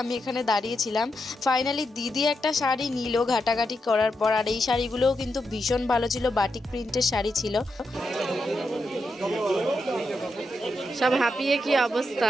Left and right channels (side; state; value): both; normal; correlation 0.85